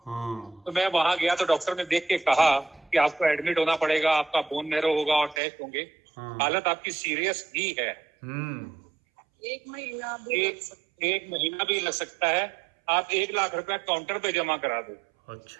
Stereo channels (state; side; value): drops out; left; at 5.4 s